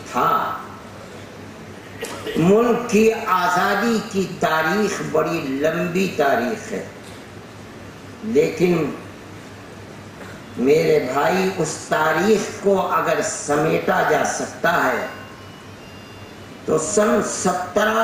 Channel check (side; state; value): both; identical; correlation 1.00